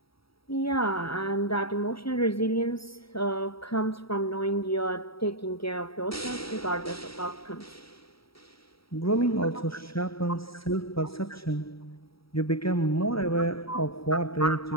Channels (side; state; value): right; late; 0.75 ms